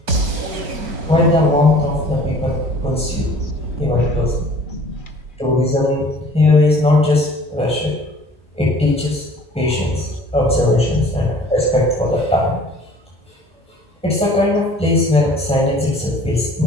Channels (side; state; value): both; normal; correlation 0.50